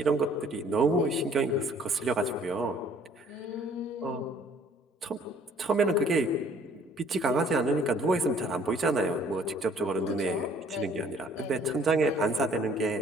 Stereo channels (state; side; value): normal; both; correlation 0.58